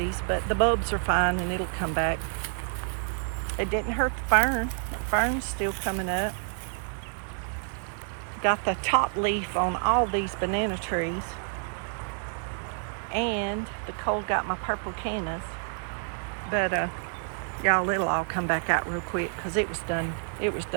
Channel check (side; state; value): left; silent; 59 dB below the other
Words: but the bulbs are fine and it'll come back. It didn't hurt the fern. The fern's still coming up. Got the top leaf on all these banana trees. And the cold got my purple cannas. But y'all, it'll all come back out real quick because it was done